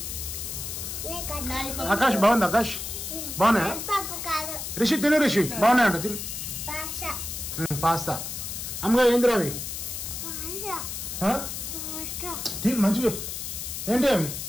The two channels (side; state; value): left; noise; hiss, 6 dB below the sound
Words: ఆకాష్ బాగుంది. ఆకాష్ బాగున్నాయా? రిషి తిను. రిషి బాగున్నాయంట, తిను. పాస్తా అమ్మగా ఏందిరా అవి? తిను మంచిగా. ఏంటి అవి?